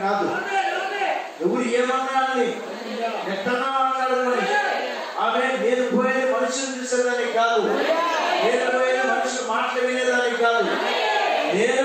కాదు. ఎవరు ఏమన్నారని ఎట్టన్నా మాట్లాడమని. ఆమె నేను పోయేది మనుషులు చూసేదానికి కాదు, నేను పోయేది మనుషులు మాటలు వినేదానికి కాదు, నేను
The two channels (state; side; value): identical; both; correlation 1.00